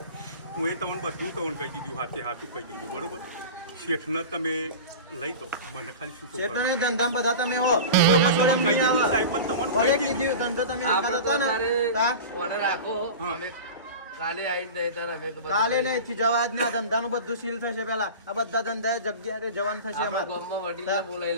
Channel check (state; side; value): inverted; both; correlation -0.32